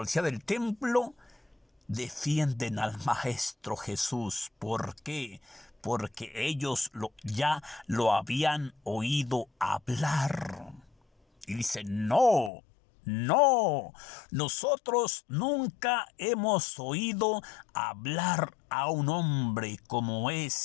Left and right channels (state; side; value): drops out; right; at 12.5 s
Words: del templo defienden al Maestro Jesús. ¿Por qué? Porque ellos ya lo habían oído hablar. Y dicen, no, nosotros nunca hemos oído hablar a un hombre como